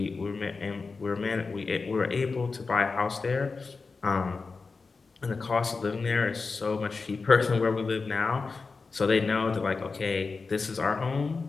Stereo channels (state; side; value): quieter; right; 4.3 dB